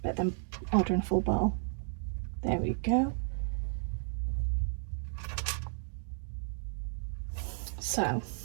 than ordering a full bottle. There we go. So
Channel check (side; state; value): left; silent; digital silence